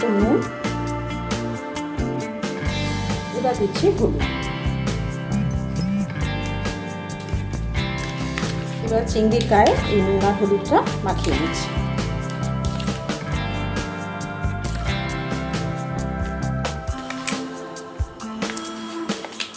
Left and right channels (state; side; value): identical; both; correlation 1.00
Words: নুন, এবার দিচ্ছি হলুদ। এবার চিংড়ির গায়ে এই নুন আর হলুদটা মাখিয়ে নিচ্ছি।